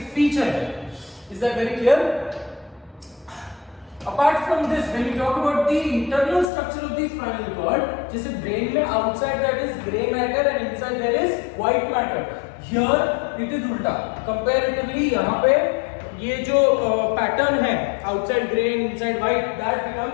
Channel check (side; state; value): right; drops out; at 6.5 s